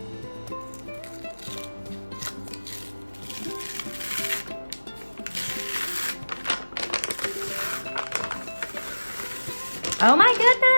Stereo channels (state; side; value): inverted; both; correlation -1.00